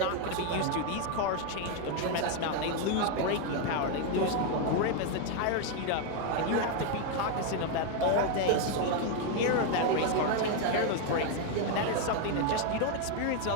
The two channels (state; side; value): different; both; correlation 0.01